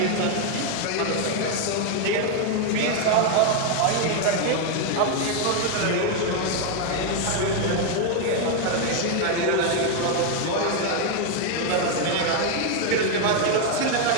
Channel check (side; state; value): both; different; correlation 0.01